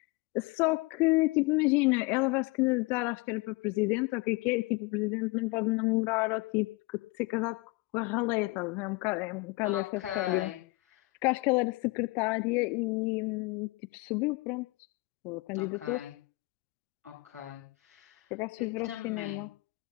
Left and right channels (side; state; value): right; quieter; 23.6 dB